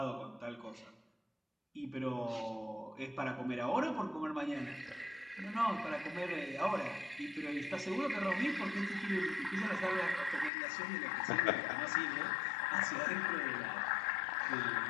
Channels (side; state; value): right; drops out; at 10.5 s